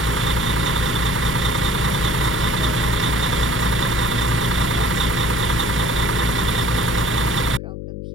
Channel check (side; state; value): left; noise; hum, 8 dB below the sound